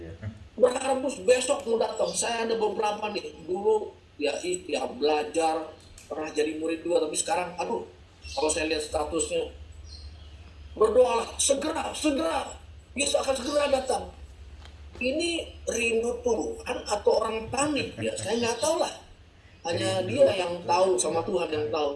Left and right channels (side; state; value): both; identical; correlation 1.00